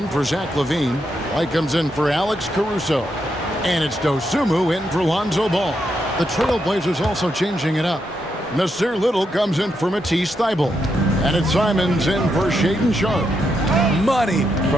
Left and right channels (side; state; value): both; normal; correlation 0.81